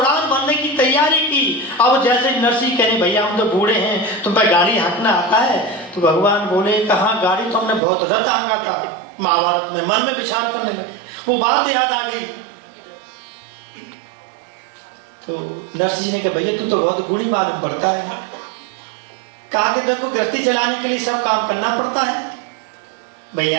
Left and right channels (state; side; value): drops out; left; at 7.8 s